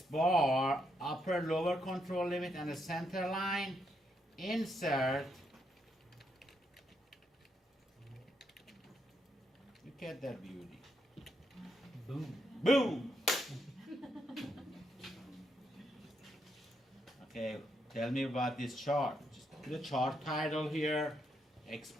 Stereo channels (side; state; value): both; normal; correlation 0.78